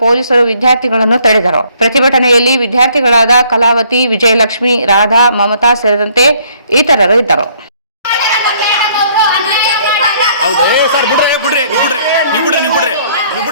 ಪೊಲೀಸರು ವಿದ್ಯಾರ್ಥಿಗಳನ್ನು ತಡೆದರು. ಪ್ರತಿಭಟನೆಯಲ್ಲಿ ವಿದ್ಯಾರ್ಥಿಗಳಾದ ಕಲಾವತಿ, ವಿಜಯಲಕ್ಷ್ಮಿ, ರಾಧಾ, ಮಮತಾ ಸೇರಿದಂತೆ ಇತರರು ಇದ್ದರು.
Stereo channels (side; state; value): both; inverted; correlation -0.63